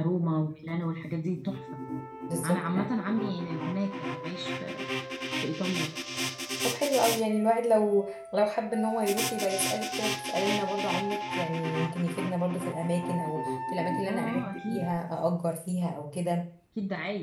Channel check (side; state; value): both; identical; correlation 1.00